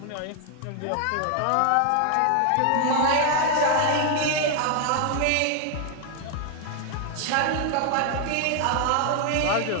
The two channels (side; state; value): both; different; correlation 0.00